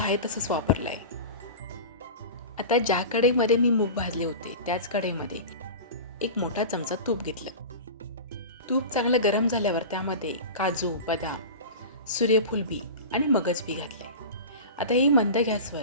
आहे तसंच वापरलं आहे. आता ज्या कढईमध्ये मी मूग भाजले होते त्याच कढईमध्ये एक मोठा चमचा तूप घेतलं. तूप चांगलं गरम झाल्यावर त्यामध्ये काजू, बदाम, सूर्यफूल बी आणि मगज बी घातले. आता ही मंद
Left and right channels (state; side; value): inverted; both; correlation -0.30